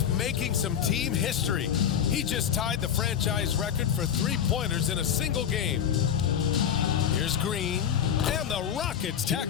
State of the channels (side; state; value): right; quieter; 8.8 dB